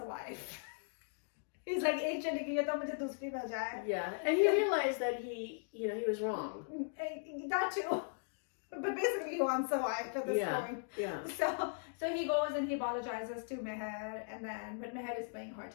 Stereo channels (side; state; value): right; silent; digital silence